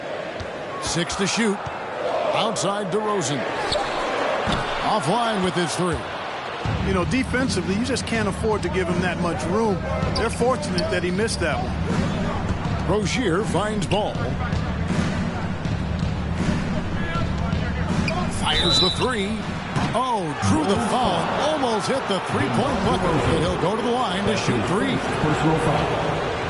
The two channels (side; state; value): both; identical; correlation 1.00